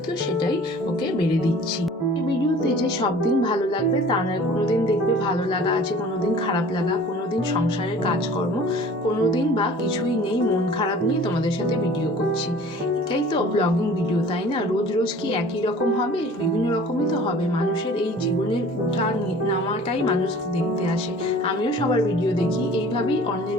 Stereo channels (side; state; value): both; normal; correlation 0.47